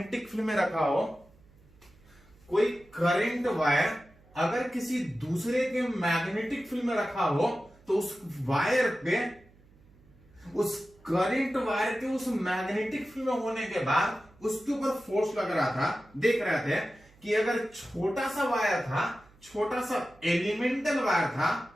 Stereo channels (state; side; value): noise; right; hum, 27 dB below the sound